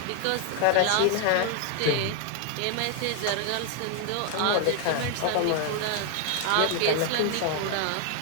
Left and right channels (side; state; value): both; different; correlation 0.00